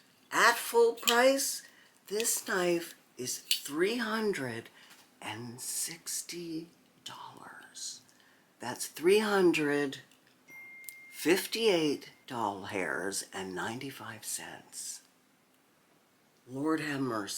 At full price, this knife is $360. That's $358.95. Lord have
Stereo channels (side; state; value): both; identical; correlation 1.00